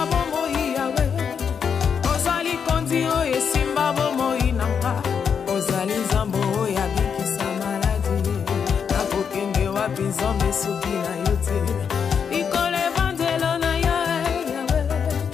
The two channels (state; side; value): quieter; right; 6.9 dB